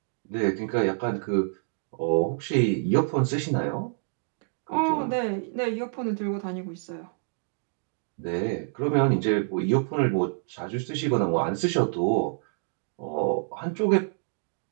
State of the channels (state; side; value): silent; left; digital silence